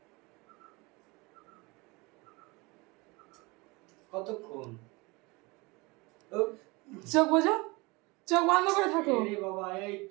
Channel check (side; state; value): left; quieter; 25.2 dB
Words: কতক্ষণ? চোখ বোঝো, চোখ বন্ধ করে থাকো, বাবা এই